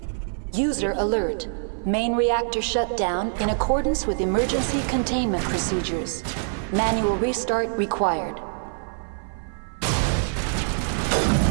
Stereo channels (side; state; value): left; silent; 56 dB below the other